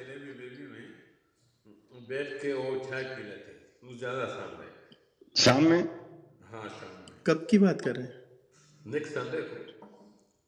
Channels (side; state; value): both; identical; correlation 1.00